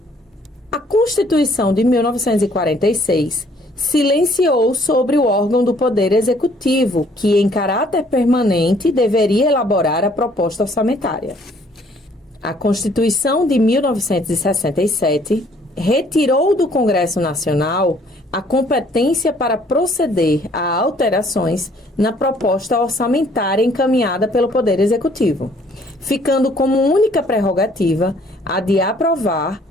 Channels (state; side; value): normal; both; correlation 0.61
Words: A Constituição de 1946 silenciou sobre o órgão do Poder Executivo, que, em caráter permanente, deveria elaborar a proposta orçamentária. A Constituição de 1967 retirou do Congresso Nacional a competência para proceder a alterações na proposta orçamentária encaminhada pelo Poder Executivo, ficando como única prerrogativa a de aprovar